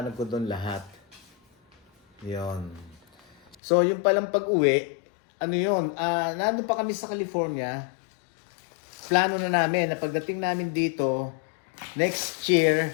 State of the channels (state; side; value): drops out; right; at 3.6 s